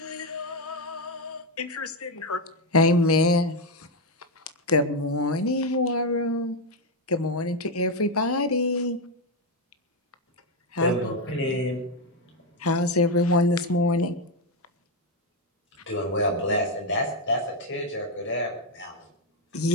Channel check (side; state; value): both; normal; correlation 0.05